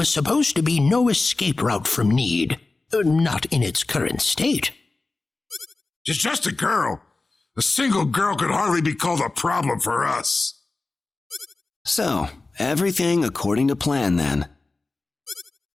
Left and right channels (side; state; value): right; quieter; 3.4 dB